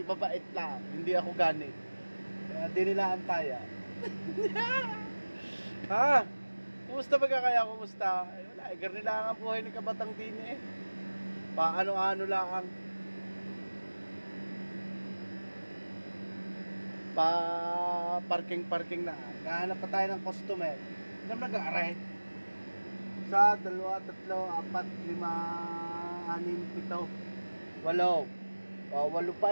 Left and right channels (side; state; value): both; inverted; correlation -1.00